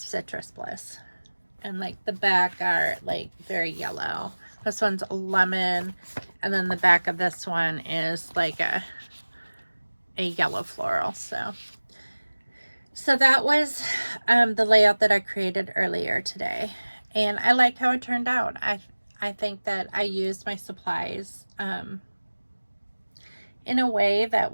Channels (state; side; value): inverted; both; correlation -1.00